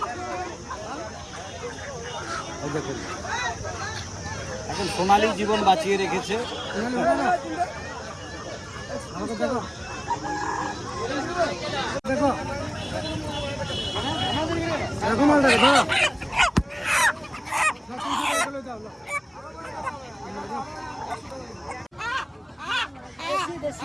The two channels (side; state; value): both; identical; correlation 1.00